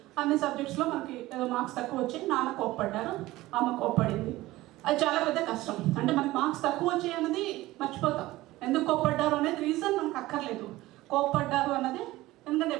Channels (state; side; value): quieter; left; 17.8 dB